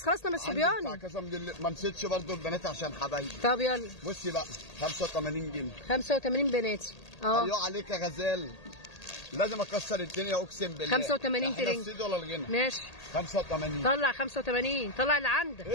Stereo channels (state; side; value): late; right; 1.8 ms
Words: خلصنا من الصبياني. ما نسيتش برضه البنات عشان حبايبي. طب يلا بصي بقى 85 جنيه. 85 بناتي. ايوه عليك يا غزال. لازم اكسر الدنيا اقسم بالله. 85 ترنج. الصيد ولا الغنى؟ ماشي 85. طلع 85. طلع اللي عندك. ايه